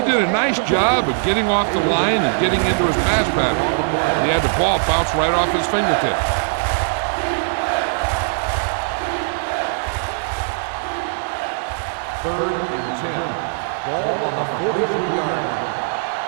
did a nice job of getting off the line and getting into his pass pattern. He had the ball bounce right off his fingertips. Third and 10. Ball on the 43-yard line.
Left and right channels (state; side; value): silent; left; digital silence